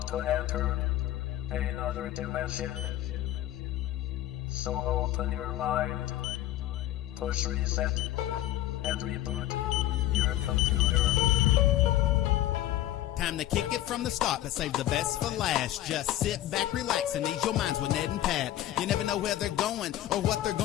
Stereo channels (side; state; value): right; quieter; 13.7 dB